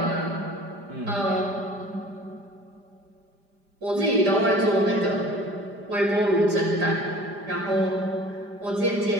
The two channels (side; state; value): left; late; 5.0 ms